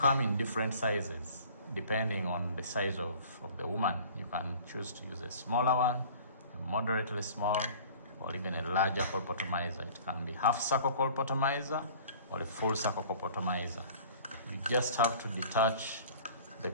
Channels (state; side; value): inverted; both; correlation -0.47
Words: in different sizes, depending on the size of the woman. You can choose to use a smaller one, a moderately small, or even a larger colpotomizer. It can be half circle colpotomizer or a full circle colpotomizer. You just have to detach the